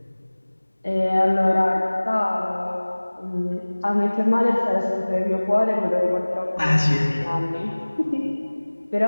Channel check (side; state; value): both; inverted; correlation -1.00